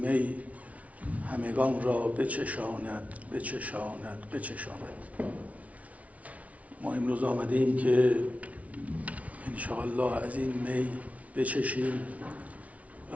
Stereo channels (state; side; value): late; left; 0.067 ms